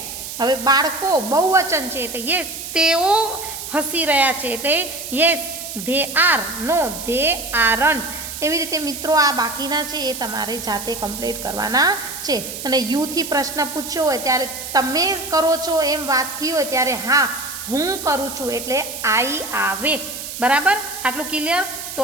હવે બાળકો બહુવચન છે એટલે યેસ તેઓ હસી રહ્યા છે, એટલે yes they are, no they aren't. એવી રીતે મિત્રો આ બાકીના છે એ તમારે જાતે કમ્પ્લીટ કરવાના છે. અને યુથી પ્રશ્ન પૂછ્યો હોય ત્યારે તમે કરો છો એમ વાત થઈ હોય ત્યારે હા હું કરું છું એટલે આઈ આવે. બરાબર, આટલું ક્લિયર? તો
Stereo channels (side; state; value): right; noise; hiss, 8 dB below the sound